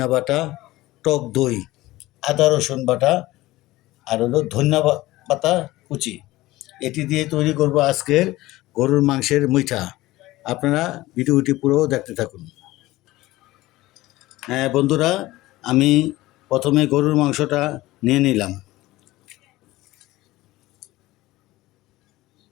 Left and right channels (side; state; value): right; quieter; 18.0 dB